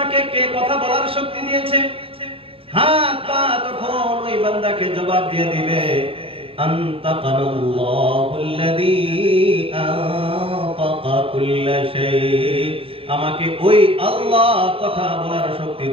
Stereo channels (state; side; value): late; left; 0.27 ms